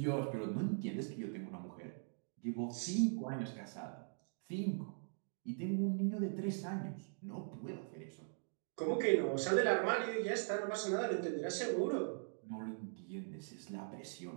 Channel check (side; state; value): left; silent; digital silence